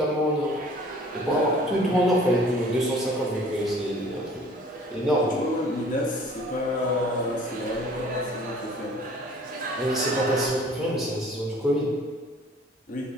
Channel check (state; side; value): normal; both; correlation 0.51